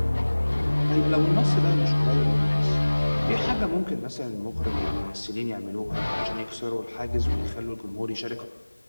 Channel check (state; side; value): inverted; both; correlation -1.00